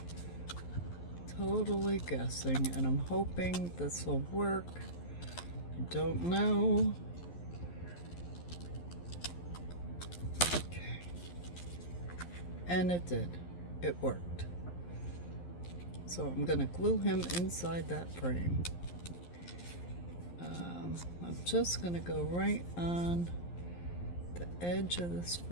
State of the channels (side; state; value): right; late; 11 ms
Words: Totally guessing, and I'm hoping this will work. I don't know. Okay. And it did. It worked. So I'm gonna glue him inside that frame. I'm just gonna go right on the edge of this